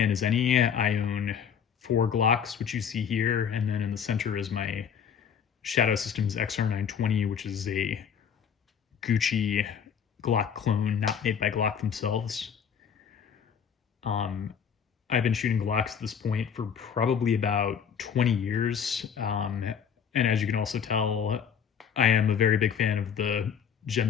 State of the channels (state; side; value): quieter; right; 7.5 dB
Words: as any. I own 4 Glocks, which you see here, and then in the center is my Shadow Systems XR920, which is a Gucci Glock clone, not made by Glock themselves. I've been shooting Glocks at this point for probably about 20 years. And as you can also tell, I am a very big fan of the